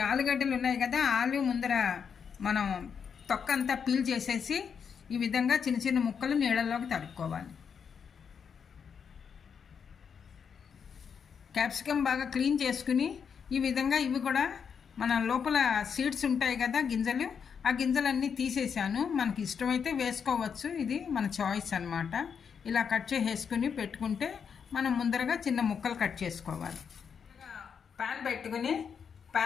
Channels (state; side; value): quieter; right; 6.8 dB